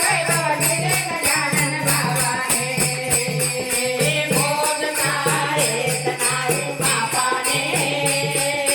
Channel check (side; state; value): both; identical; correlation 1.00